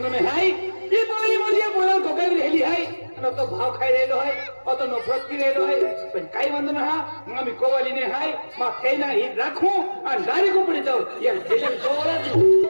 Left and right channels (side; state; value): both; inverted; correlation -1.00